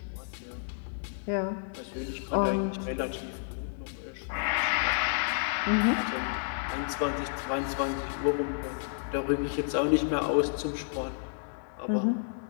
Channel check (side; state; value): right; silent; digital silence